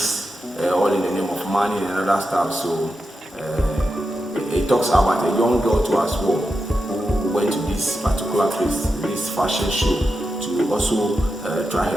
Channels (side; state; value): both; normal; correlation 0.89